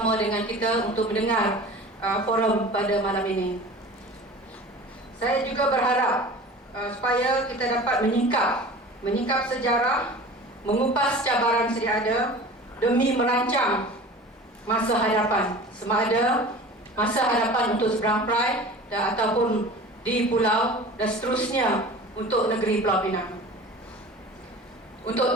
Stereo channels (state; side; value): normal; both; correlation 0.39